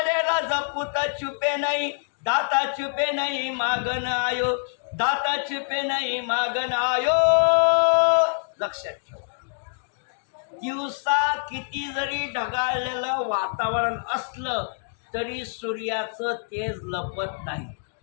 रजपूत छुपे नहीं, दाता छुपे नहीं मागन आयो, दाता छुपे नहीं मागन आयो। लक्षात ठेवा, दिवसा किती जरी ढगाळलेलं वातावरण असलं तरी सूर्याचं तेज लपत नाही।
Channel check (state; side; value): silent; right; digital silence